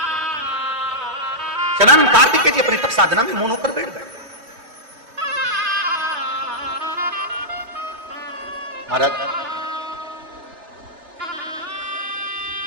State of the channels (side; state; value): left; late; 3.1 ms